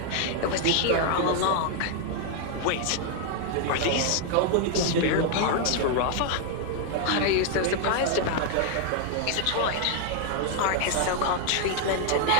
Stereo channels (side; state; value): both; different; correlation 0.00